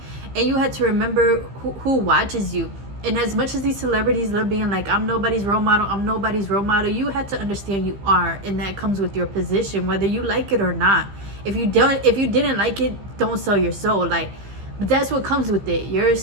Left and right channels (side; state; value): left; late; 15 ms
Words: and you had to remember who watches you. And as much as these celebrities love being like, I'm nobody's role model, you had to understand you are, and that comes with your position, whether you like it or not. If you didn't like it, don't sell your soul. Like, but that's what comes with it. You're